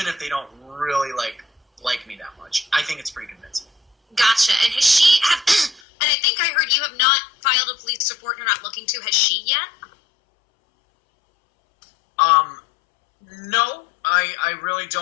if they don't really like me that much. I think it's pretty convincing. Gotcha. And has she, and I think I heard you have not filed a police report and you're not looking to. Has she yet? No, I really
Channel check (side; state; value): right; drops out; at 5.8 s